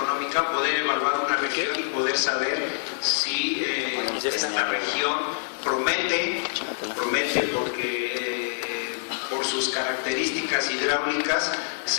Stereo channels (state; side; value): silent; right; digital silence